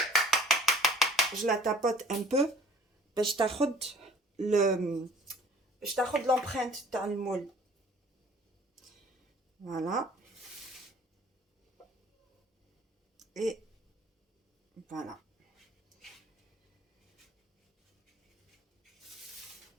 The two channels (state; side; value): normal; both; correlation 0.53